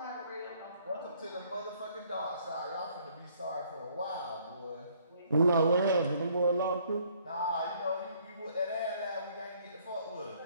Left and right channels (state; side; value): inverted; both; correlation -0.63